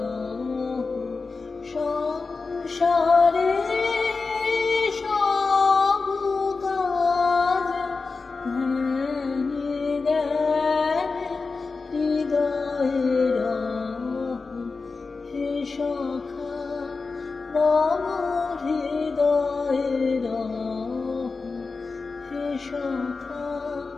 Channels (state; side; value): quieter; right; 4.2 dB